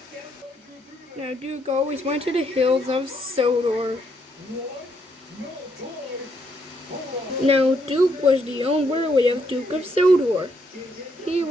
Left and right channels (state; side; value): normal; both; correlation 0.74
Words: Now Duke always went to the hills of Sodor. Now Duke was the owner of Duke of Sodor. He